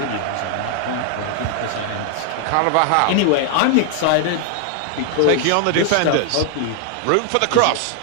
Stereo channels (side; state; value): both; different; correlation 0.00